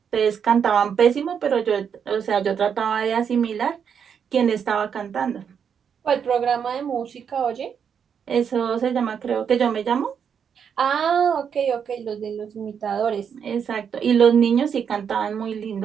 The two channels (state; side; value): quieter; left; 7.4 dB